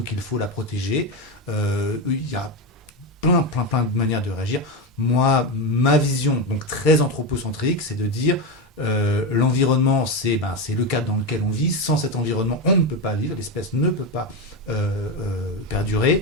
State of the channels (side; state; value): both; normal; correlation 0.13